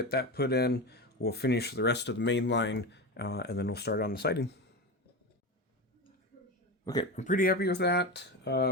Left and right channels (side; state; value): both; normal; correlation 0.21